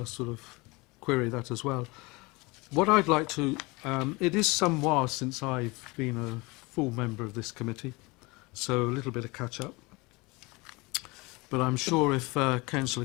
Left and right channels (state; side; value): quieter; right; 24.9 dB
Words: sort of query that as well. What I'd like to, it is some while since I've been a full member of this committee, so a little bit of catch up. But I'm sure if